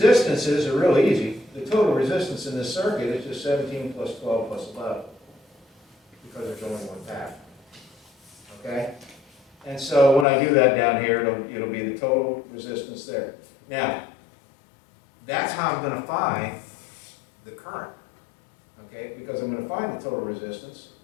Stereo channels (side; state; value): right; drops out; at 10.2 s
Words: are really easy. The total resistance in this circuit is just 17 plus 12 plus 11 because there's only one path. Okay? And so when I do that down here, it'll be the total resistance there. Now, that's how I'm going to find the current. Okay?